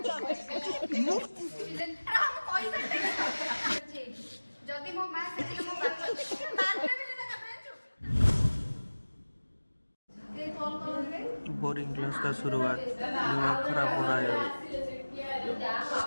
बोरिंग क्लास का शुरुआत, दिमाग खराब हो रहा है अभी।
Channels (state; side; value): inverted; both; correlation -1.00